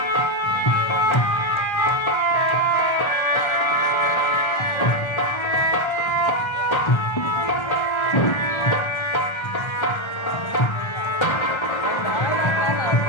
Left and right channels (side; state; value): right; late; 1.3 ms